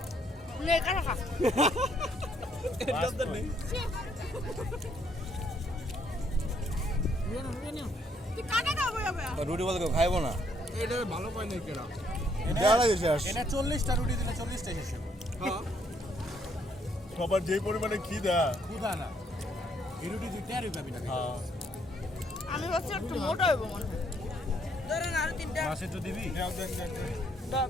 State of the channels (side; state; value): both; normal; correlation 0.70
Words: নে কাটা খা তুই কাটা খাবো যাবে রুটি বলতে কেউ খাইবো না এটা ভালো পাই নাই কেরা এটা 40টা রুটি দিলে 40টা শেষ হবে হ্যাঁ সবার যে পরিমাণে খিদা খুদা না এই রুটি তুই টেরই পাবি না আমি ভাবছি একটু মোটা হইব মনে হয় ধরেন আরো তিনটা মাছ একটু দিবি